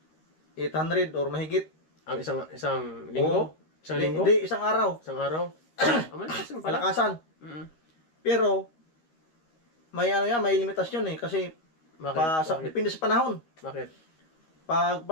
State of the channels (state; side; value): late; right; 13 ms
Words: 800 or mahigit. Ang isang linggo? Isang linggo? Hindi, isang araw. Isang araw? Malakas yun pala. Kalakasan. Mm. Pero, may ano yan, may limitasyon eh. Kasi, Bakit? depende sa panahon. Bakit? Pag